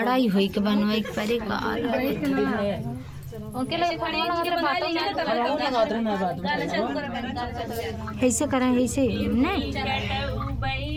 ही होई के बनवाई के परे का उनके लिए खड़ी उनके बना लेंगे ऐसे करें ऐसे नहीं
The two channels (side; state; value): both; identical; correlation 1.00